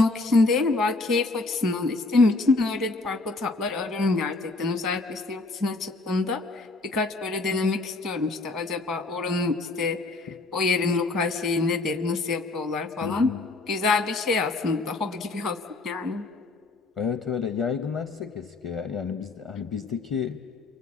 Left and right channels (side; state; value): right; quieter; 3.4 dB